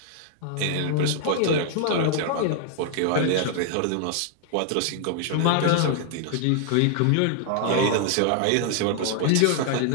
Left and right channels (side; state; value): both; different; correlation 0.00